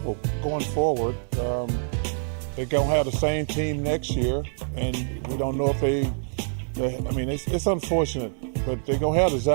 going forward. They're going to have the same team next year, and we don't know if they I mean, it's unfortunate, but they're going to have the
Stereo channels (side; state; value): left; silent; digital silence